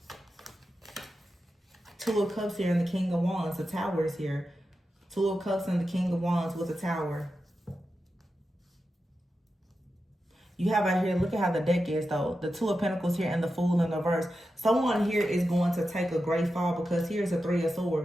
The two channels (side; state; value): both; normal; correlation 0.90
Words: Two of Cups here and the King of Wands. The Tower is here. Two of Cups and the King of Wands with the Tower. You have out here, look at how the deck is though. The Two of Pentacles here and the Fool in the reverse. Someone here is going to take a great fall because here's the Three of